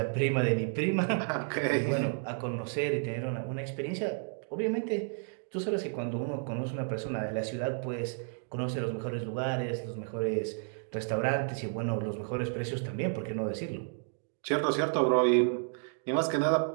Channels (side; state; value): left; silent; 57 dB below the other